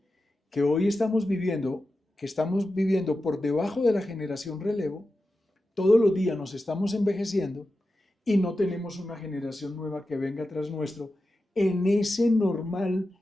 Que hoy estamos viviendo por debajo de la generación relevo, todos los días nos estamos envejeciendo y no tenemos una generación nueva que venga tras nuestro en esa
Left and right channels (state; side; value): normal; both; correlation 0.92